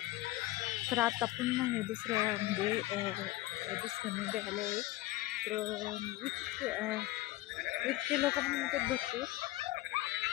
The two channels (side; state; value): right; quieter; 17.7 dB